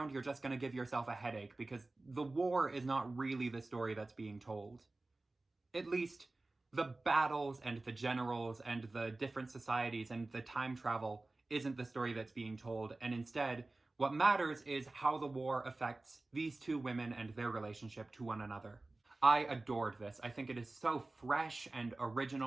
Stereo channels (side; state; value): left; quieter; 3.1 dB